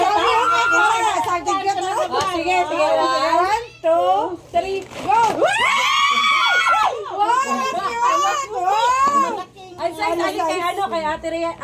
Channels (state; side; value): identical; both; correlation 1.00